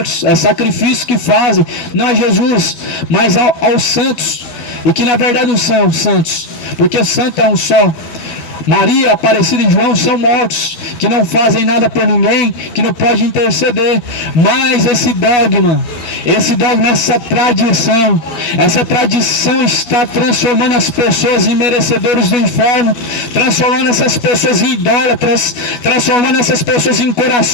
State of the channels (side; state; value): right; late; 12 ms